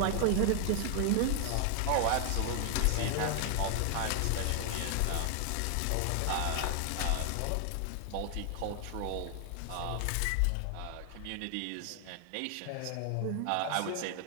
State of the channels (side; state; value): both; different; correlation 0.00